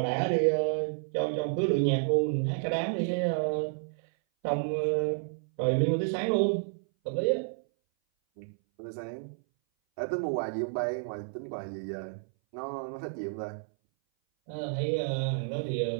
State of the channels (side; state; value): left; silent; 57 dB below the other